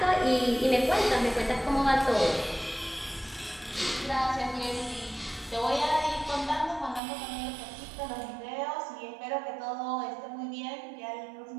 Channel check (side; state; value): left; drops out; at 7.0 s